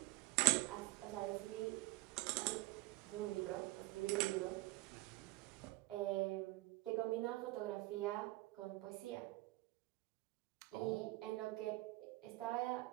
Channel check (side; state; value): left; quieter; 20.2 dB